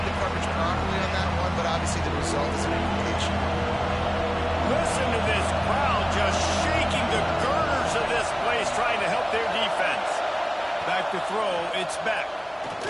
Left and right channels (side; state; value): both; identical; correlation 1.00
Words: the coverage properly on that one, but obviously the result is an incompletion. Listen to this crowd just shaking the girders of this place, trying to help their defense. Back to throw, it's Beck.